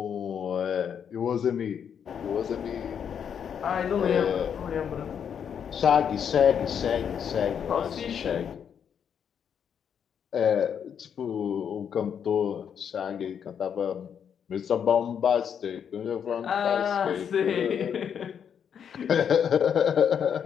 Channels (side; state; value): right; quieter; 7.9 dB